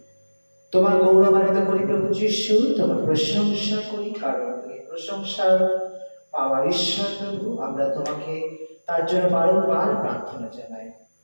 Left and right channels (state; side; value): inverted; both; correlation -1.00